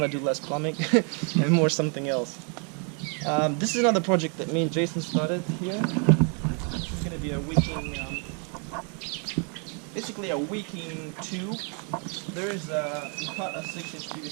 to do less plumbing and more something else. This is another project that me and Jason started here. This is going to be a wicking, basically a wicking tube. We cut a 6-inch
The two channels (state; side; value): quieter; left; 38.7 dB